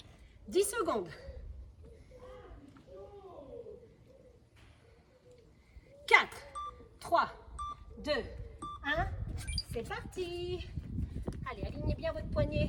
« 10 secondes. 4, 3, 2, 1, c'est parti. Allez, alignez bien votre votre poignet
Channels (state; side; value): identical; both; correlation 1.00